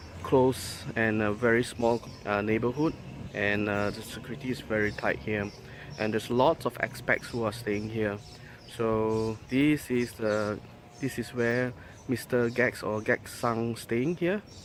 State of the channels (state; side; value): identical; both; correlation 1.00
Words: close and a very small neighborhood, and the security is very tight here, and there's lots of expats who are staying here. So this is where Mr. GACKT or GACKT-san staying here.